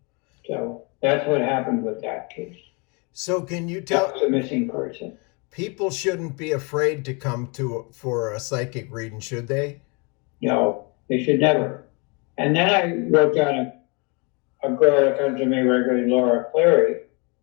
So that's what happened with that case. So can you tell? That was a missing person. People shouldn't be afraid to come for a psychic reading, should they? No, they should never. And then I wrote down a girl that comes to me regularly, Laura Cleary.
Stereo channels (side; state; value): right; quieter; 31.2 dB